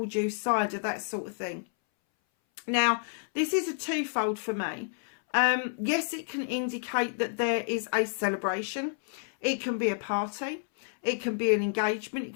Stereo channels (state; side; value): silent; right; 58 dB below the other